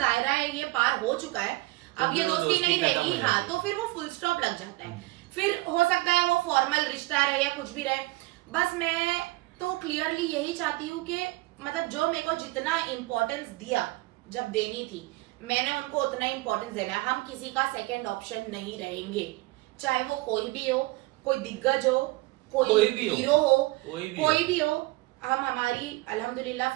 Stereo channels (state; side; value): quieter; left; 21.2 dB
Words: है ये पार हो चुका है, अब ये दोस्ती नहीं रहेगी, हाँ, तो फिर वो फुल स्टॉप लग जाता है। फिर हो सकता है वो फॉर्मल रिश्ता रहे या कुछ भी रहे, बस मैं तो क्लियरली यही चाहती हूँ कि मतलब जो मेरे को जितना इम्पोर्टेंस दिया जब देनी थी मैंने उनको उतना इम्पोर्टेंस देना है। हम किसी का सेकंड ऑप्शन नहीं रहेंगे, चाहे वो कोई भी हो, कोई दिग्गज हो, कोई हीरो हो, कोई भी हो। हम हमारी अल्हम्दुलिल्लाह